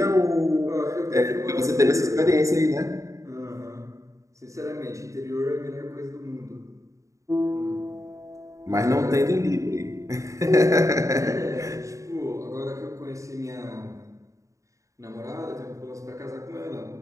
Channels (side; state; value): left; late; 0.15 ms